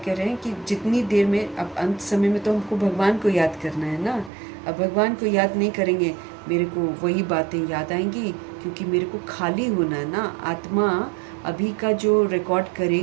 रहे हैं कि जितनी देर में, अब अंत समय में तो हमको भगवान को याद करना है ना। अब भगवान को याद नहीं करेंगे, मेरे को वही बातें याद आएंगी, क्योंकि मेरे को खाली होना है ना। आत्मा अभी का जो रिकॉर्ड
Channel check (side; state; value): left; drops out; at 4.3 s